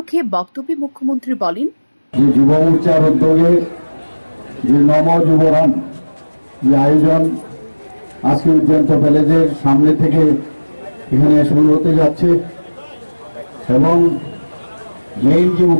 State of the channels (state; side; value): inverted; both; correlation -1.00